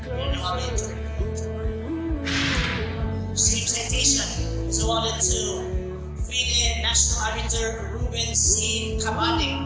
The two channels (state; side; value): identical; both; correlation 1.00